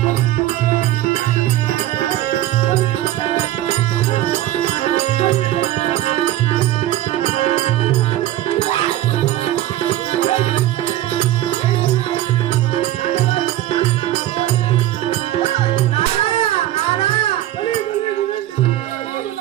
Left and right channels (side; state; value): left; quieter; 14.1 dB